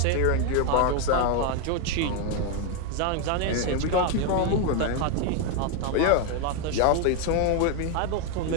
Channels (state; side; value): different; both; correlation 0.02